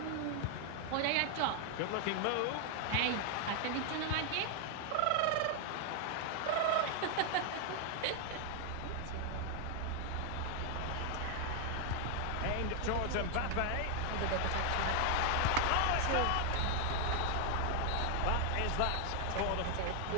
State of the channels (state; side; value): different; both; correlation 0.00